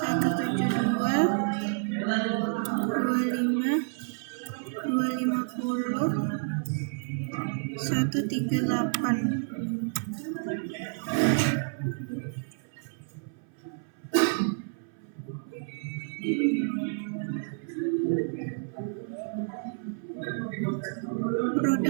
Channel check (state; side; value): silent; left; 58 dB below the other